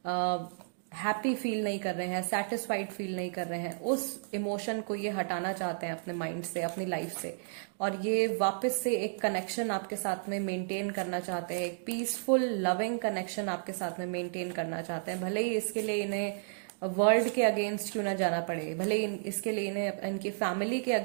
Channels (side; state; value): left; silent; digital silence